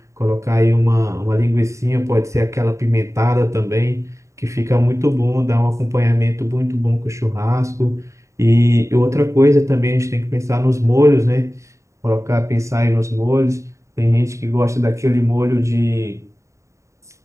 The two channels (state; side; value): late; left; 0.14 ms